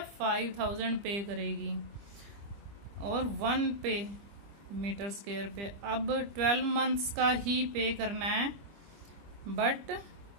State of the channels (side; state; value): left; late; 25 ms